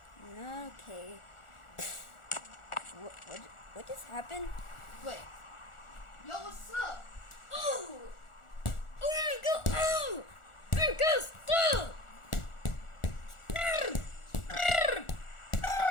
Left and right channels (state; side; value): late; right; 1.4 ms